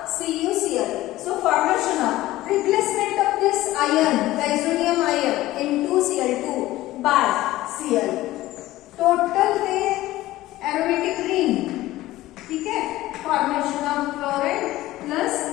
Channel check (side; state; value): right; quieter; 16.5 dB